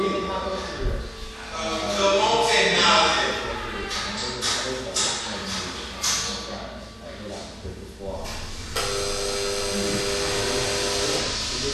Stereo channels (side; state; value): both; identical; correlation 1.00